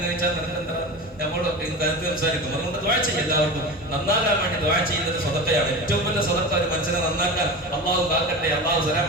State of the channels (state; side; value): normal; both; correlation 0.29